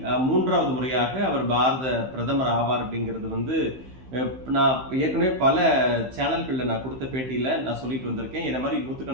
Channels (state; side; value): late; left; 15 ms